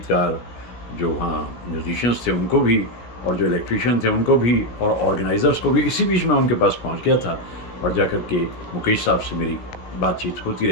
जो वहाँ म्यूजिशियंस थे उनको भी और जो इलेक्ट्रीशियन थे उनको भी और ऑर्गेनाइज़र्स को भी। इसी बीच मैं उनके पास पहुँच गया था और जाकर के मुकेश साहब से मेरी बातचीत होती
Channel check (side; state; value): right; late; 17 ms